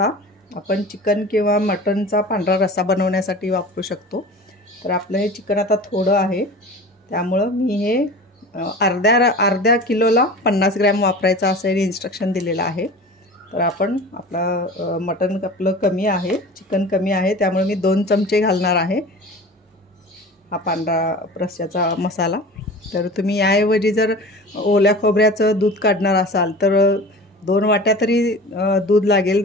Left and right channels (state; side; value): normal; both; correlation 0.37